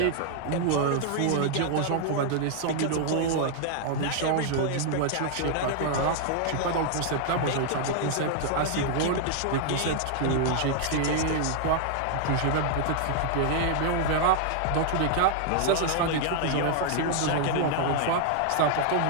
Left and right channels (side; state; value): both; different; correlation 0.00